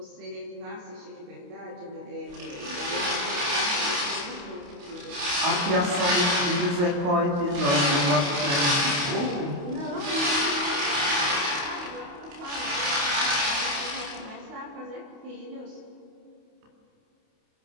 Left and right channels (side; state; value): left; late; 28 ms